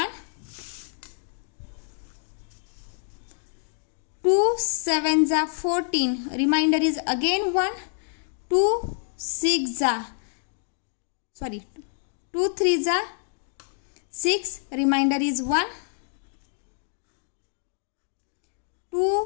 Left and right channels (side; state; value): right; silent; 60 dB below the other